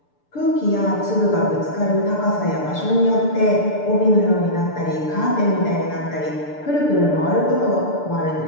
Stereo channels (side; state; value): right; late; 6.8 ms